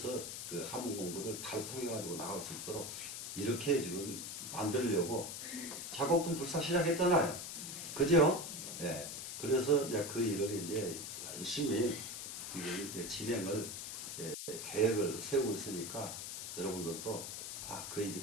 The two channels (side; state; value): left; noise; hiss, 7 dB below the sound